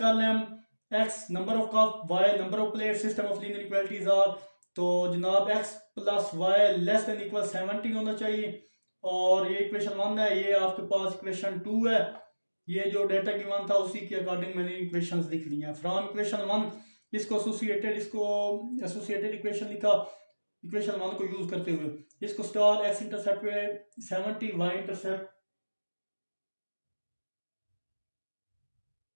लें हम x number of cup, y number of plate, system of linear equalities are. तो जनाब x plus y less than equal 70 होना चाहिए और ये इक्वेशन 1 है। ये आपके पास इक्वेशन 2 है। ये जो डेटा गिवन था उसी के अकॉर्डिंग मैंने इक्वेशंस लिख ली हैं। फ्रॉम इक्वेशन 1 इसको एसोसिएटेड इक्वेशन लिखा इक्वेशन 1 को यूज करते हुए। इसको स्टार एक्स इंटरसेप्ट पे 70, वाई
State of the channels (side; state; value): both; inverted; correlation -1.00